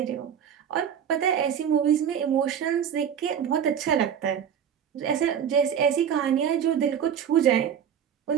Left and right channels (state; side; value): quieter; left; 8.5 dB